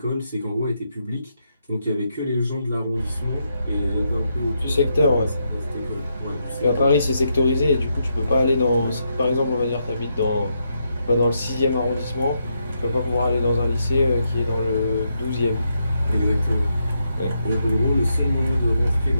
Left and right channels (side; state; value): both; inverted; correlation -0.80